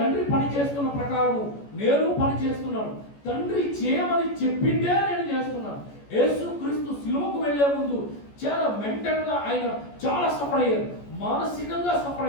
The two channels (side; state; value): right; late; 14 ms